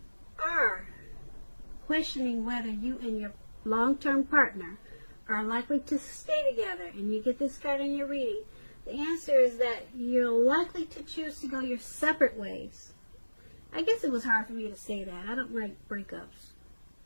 are questioning whether you and your long-term partner are likely to stay together, and you get this card in your reading, the answer is that you're likely to choose to go your separate ways. I guess it was hard for me to say that. I don't like breakups,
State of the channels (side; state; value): both; inverted; correlation -1.00